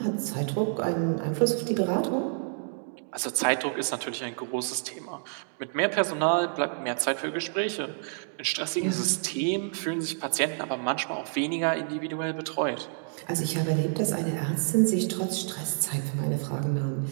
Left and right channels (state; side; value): silent; left; digital silence